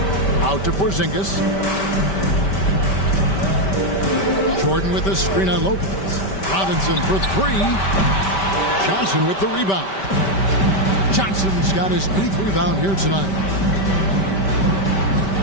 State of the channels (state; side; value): late; right; 5.1 ms